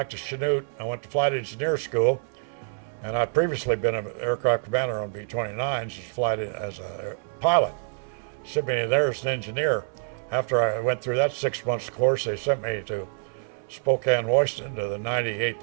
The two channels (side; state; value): left; silent; 60 dB below the other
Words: to Chanute. I went to flight engineer school, and I'd previously been an aircraft commander on B-29s as a pilot. Sent me there as an engineer. After I went through that 6 months course, they sent me to Spokane, Washington, to the